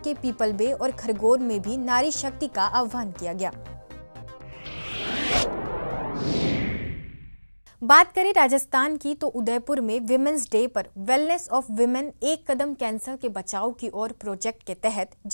पीपल बे और खरगोन में भी नारी शक्ति का आह्वान किया गया। बात करें राजस्थान की, तो उदयपुर में विमेंस डे पर वेलनेस ऑफ विमेन एक कदम कैंसर के बचाव की ओर प्रोजेक्ट के तहत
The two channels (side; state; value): both; inverted; correlation -1.00